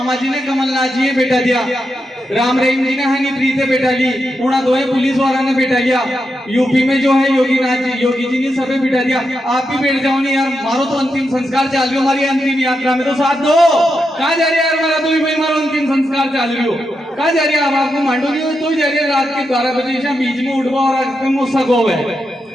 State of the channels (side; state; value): both; normal; correlation 0.85